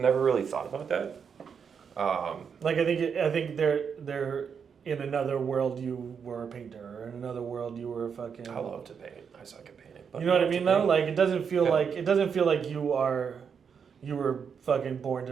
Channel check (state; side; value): quieter; left; 6.7 dB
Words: really thought about that. Like I think they're in another world you were a painter, or in another world you were a fucking. I love to paint. I suck at painting. But You know what I love to mean though? paint. Like it doesn't feel Yeah. like you were fucking born